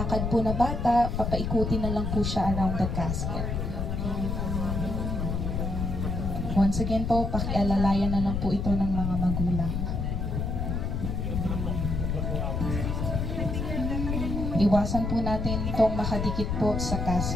po na bata, papaikutin na lang po siya around the casket. Once again po, pakialalayan na lang po ito ng mga magulang. Iwasan po natin itong makadikit po sa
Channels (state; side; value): noise; left; rumble, 1 dB below the sound